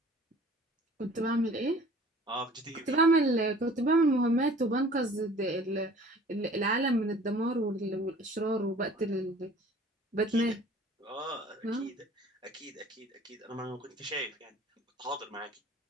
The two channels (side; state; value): both; normal; correlation 0.49